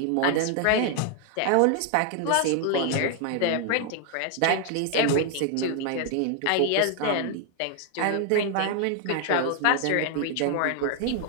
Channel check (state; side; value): different; both; correlation 0.00